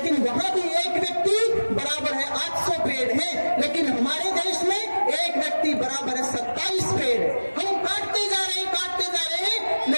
वहां भी एक व्यक्ति बराबर है 800 पेड़ है। लेकिन हमारे देश में एक व्यक्ति बराबर है 27 पेड़। हम काटते जा रहे हैं,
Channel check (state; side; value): inverted; both; correlation -1.00